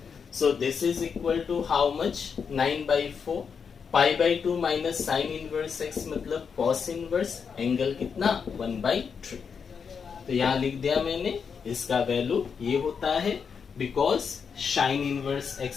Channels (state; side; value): quieter; right; 6.3 dB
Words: so this is equal to how much, 9 by 4, pi by two minus sine inverse x मतलब कॉस इनवर्स एंगल कितना 1/3। तो यहाँ लिख दिया मैंने, इसका वैल्यू ये होता है because sign inverse